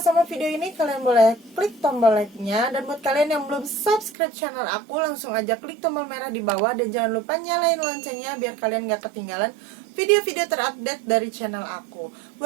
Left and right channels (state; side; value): drops out; left; at 4.1 s